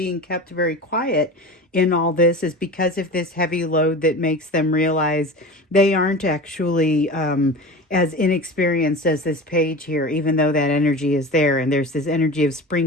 kept very quiet in all this is because of this heavy load that makes them realize they aren't actually as inexperienced as this page here, even though that energy is there. And there's this energy of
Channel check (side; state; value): both; normal; correlation 0.33